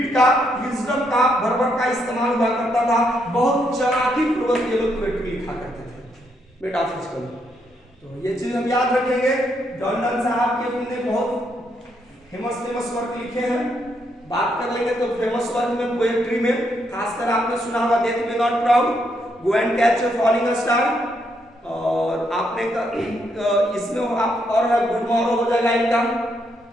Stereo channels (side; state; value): both; normal; correlation 0.76